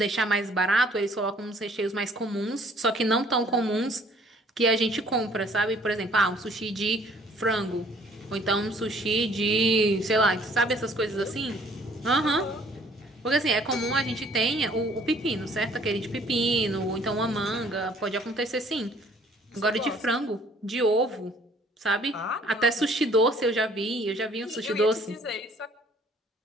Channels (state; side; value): normal; both; correlation 0.58